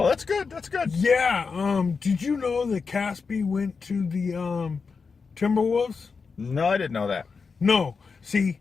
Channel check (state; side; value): quieter; right; 5.1 dB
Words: that's good. That's good. Yeah. Did you know that Caspi went to the Timberwolves? No, I didn't know that. No. See,